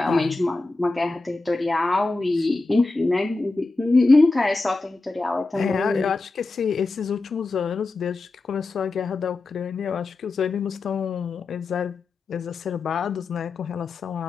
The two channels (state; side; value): quieter; right; 3.4 dB